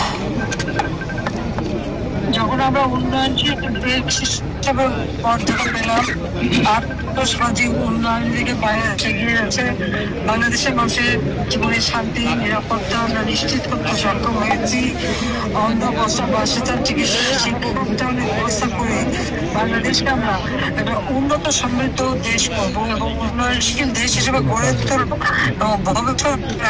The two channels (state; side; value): identical; both; correlation 1.00